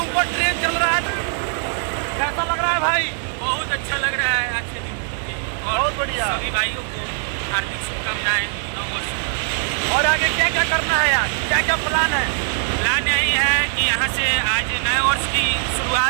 ट्रेन चल रहा है। कैसा लग रहा है भाई? बहुत अच्छा लग रहा है आज के दिन। और बहुत बढ़िया। सभी भाइयों को हार्दिक शुभकामनाएं नव वर्ष। और आगे क्या क्या करना है यार? क्या क्या प्लान है? प्लान यही है कि यहाँ से आज नए वर्ष की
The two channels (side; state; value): left; silent; 59 dB below the other